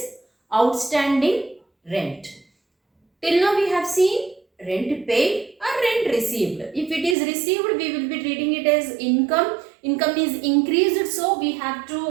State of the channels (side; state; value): left; drops out; at 7.2 s